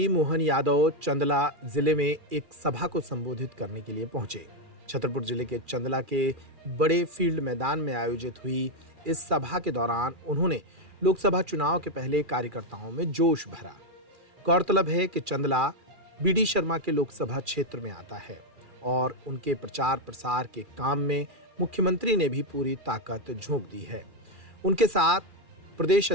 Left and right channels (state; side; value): late; left; 2.4 ms